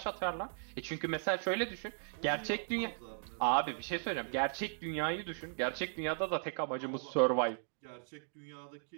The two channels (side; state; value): left; silent; digital silence